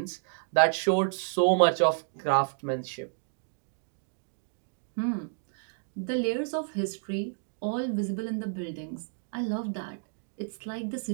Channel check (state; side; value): silent; left; digital silence